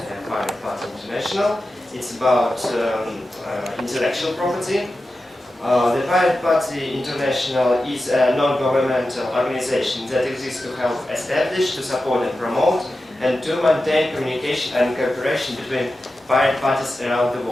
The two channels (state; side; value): normal; both; correlation 0.93